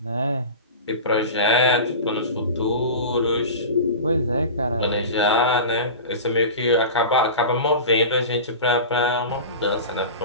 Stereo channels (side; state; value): both; inverted; correlation -0.31